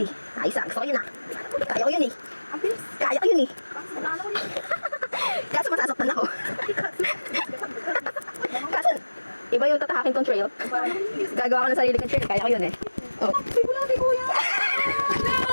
Ayos ah, gusto ko yun ah. Kaya ko yun eh. Ang bilis. Kaya ko yun eh. Kasi nalala ko yun. Kaso masasaktan ako. Kaso, iba yung tatahakin kong trail. Gagawa ko ng sarili kong trail. Kaya ko yun eh. Oh. Ay, wala kay Kuya.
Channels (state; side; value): inverted; both; correlation -1.00